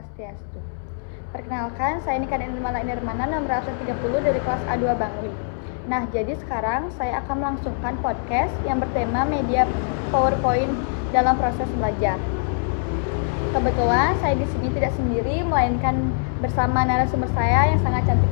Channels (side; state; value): right; silent; 63 dB below the other